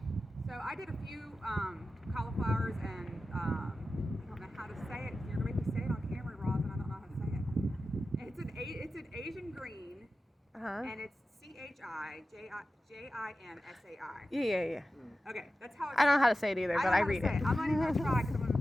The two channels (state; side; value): normal; both; correlation 0.93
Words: So I did a few cauliflowers, and I don't know how to say it. You're gonna make me say it on camera, Roz, and I don't know how to say it. It's an Asian green, and it's CHIJIMSAI. Yeah. Okay, that's how it's. I don't know how to say it either, but I read it. I'm not even gonna try because I'm gonna